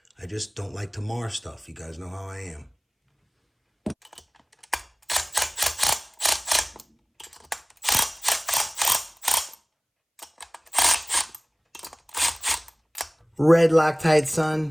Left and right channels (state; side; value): identical; both; correlation 1.00